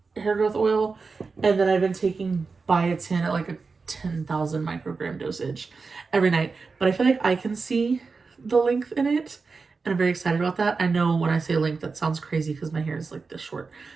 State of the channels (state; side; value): quieter; left; 4.5 dB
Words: hair growth oil. And then I've been taking biotin at like a 10,000 microgram dosage every night. But I feel like I can see the length in it. And I'm very excited about that. I know when I say length, that sounds crazy because my hair is like this short.